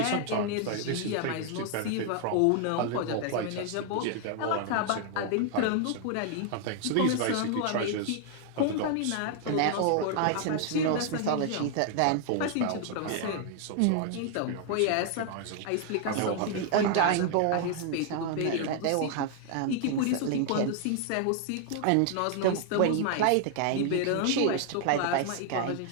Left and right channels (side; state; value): both; different; correlation 0.00